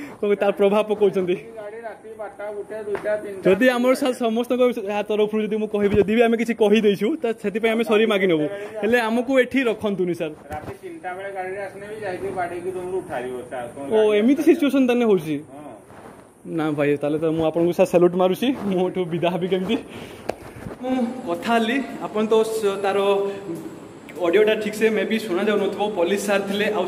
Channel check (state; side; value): identical; both; correlation 1.00